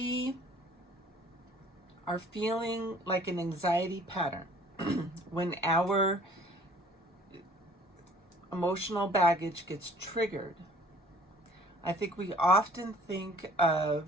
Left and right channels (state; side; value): normal; both; correlation 0.53